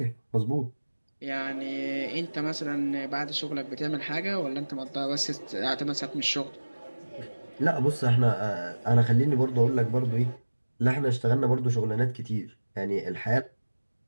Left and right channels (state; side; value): inverted; both; correlation -1.00